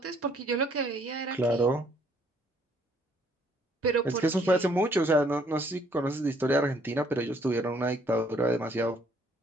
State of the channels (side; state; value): both; normal; correlation 0.64